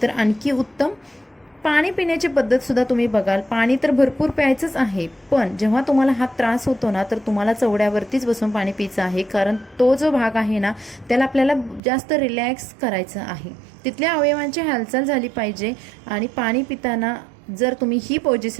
तर आणखी उत्तम. पाणी पिण्याची पद्धत सुद्धा तुम्ही बघाल, पाणी तर भरपूर प्यायचंच आहे, पण जेव्हा तुम्हाला हा त्रास होतो ना तर तुम्हाला चवड्यावरतीच बसून पाणी प्यायचं आहे, कारण तो जो भाग आहे ना त्याला आपल्याला जास्त रिलॅक्स करायचं आहे, तिथल्या अवयवांची हालचाल झाली पाहिजे. आणि पाणी पिताना जर तुम्ही ही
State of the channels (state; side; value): drops out; left; at 11.8 s